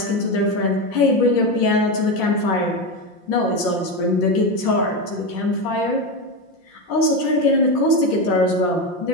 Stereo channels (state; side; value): late; right; 5.7 ms